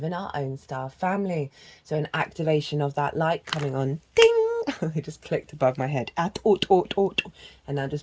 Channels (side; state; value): both; identical; correlation 1.00